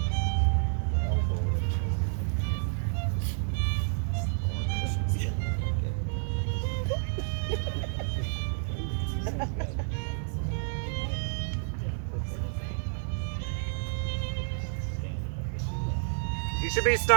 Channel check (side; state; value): left; silent; digital silence